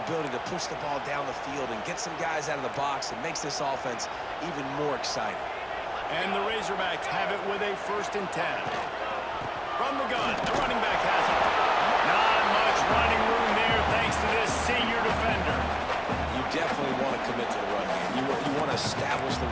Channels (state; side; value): identical; both; correlation 1.00